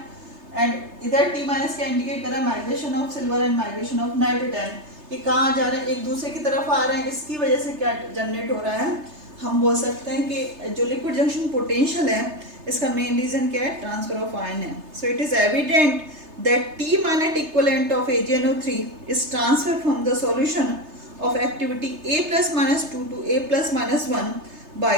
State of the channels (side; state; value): left; late; 3.3 ms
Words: And इधर टी माइनस क्या इंडिकेट कर रहा है? Migration of silver and migration of nitrate ion. ये कहाँ जा रहे हैं? एक दूसरे की तरफ आ रहे हैं। इसकी वजह से क्या जनरेट हो रहा है? हम बोल सकते हैं कि जो लिक्विड जंक्शन पोटेंशियल है इसका मेन रीजन क्या है? ट्रांसफर ऑफ आयन है। So it is evident that t minus equivalent of AgNO3 is transfer from the solution of activity A plus minus 2 टू A plus minus 1